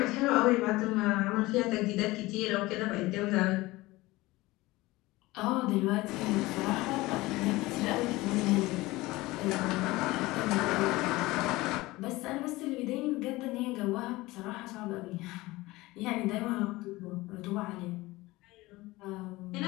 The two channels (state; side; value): quieter; right; 20.0 dB